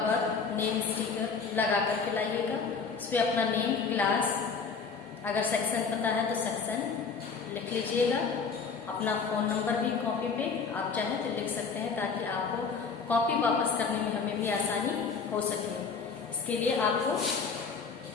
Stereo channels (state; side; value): quieter; right; 5.3 dB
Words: नेम स्टिकर लगा करके लाइएगा। उस पर अपना नेम, क्लास, अगर सेक्शन पता है तो सेक्शन लिख लीजिएगा। अपना फ़ोन नंबर भी कॉपी पे आप चाहें तो लिख सकते हैं, ताकि आपको कॉपी वापस करने में हमें भी आसानी हो सके। इसके लिए आपको